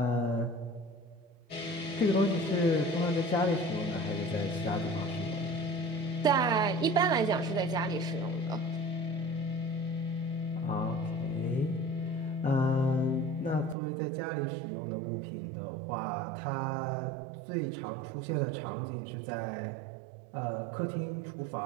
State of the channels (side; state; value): left; drops out; at 13.8 s